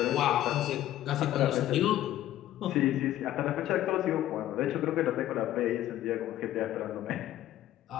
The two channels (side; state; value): right; quieter; 13.4 dB